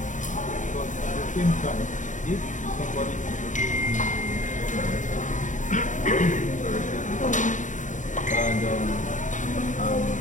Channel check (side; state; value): right; late; 0.36 ms